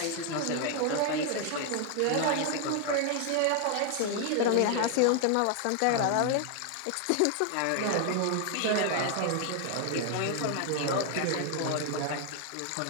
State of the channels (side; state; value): both; different; correlation 0.00